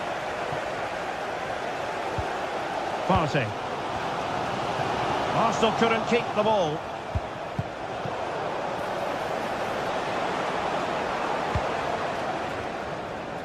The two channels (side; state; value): both; identical; correlation 1.00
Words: Partey. Arsenal couldn't keep the ball.